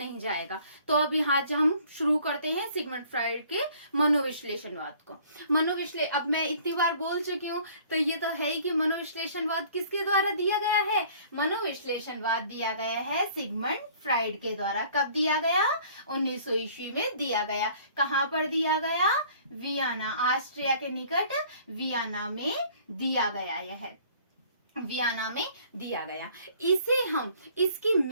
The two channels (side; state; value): both; inverted; correlation -0.54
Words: जाएगा। तो अब यहाँ हम शुरू करते हैं सिगमंड फ्राइड के मनोविश्लेषणवाद को। अब मैं इतनी बार बोल चुकी हूँ, तो ये तो है ही कि मनोविश्लेषणवाद किसके द्वारा दिया गया है। मनोविश्लेषणवाद दिया गया है सिगमंड फ्राइड के द्वारा। कब दिया गया? 1900 ईस्वी में दिया गया। कहाँ पर दिया गया? वियना, ऑस्ट्रिया के निकट वियना में दिया गया। यह वियना में दिया गया। इसे हम इसकी